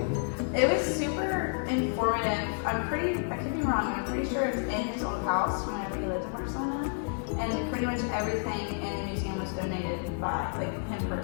It was super informative. I could be wrong, I'm pretty sure it's in his old house whenever he lived in Barcelona. And pretty much everything in the museum was donated by him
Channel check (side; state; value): right; silent; 58 dB below the other